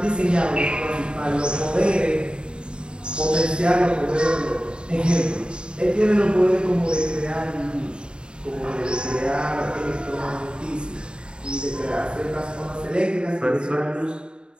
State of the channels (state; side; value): late; left; 0.051 ms